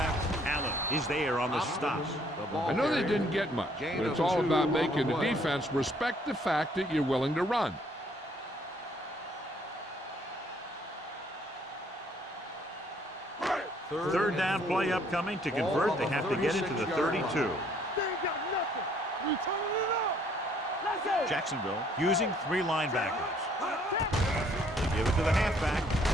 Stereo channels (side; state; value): both; normal; correlation 0.64